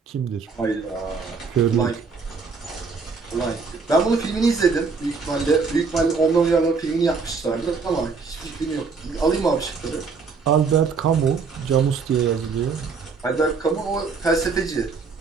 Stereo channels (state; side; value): quieter; left; 4.9 dB